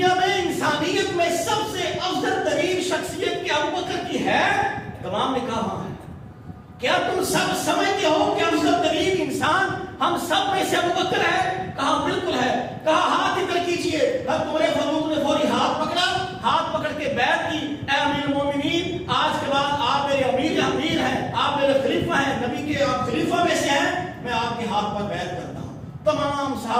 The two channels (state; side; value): identical; both; correlation 1.00